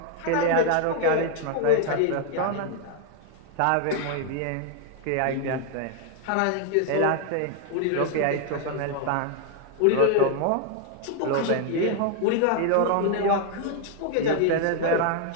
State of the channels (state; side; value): different; both; correlation 0.00